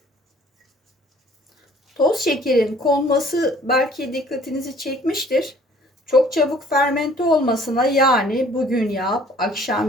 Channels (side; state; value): both; normal; correlation 0.55